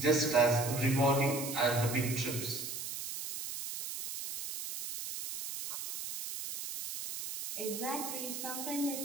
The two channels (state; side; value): noise; right; hiss, 7 dB below the sound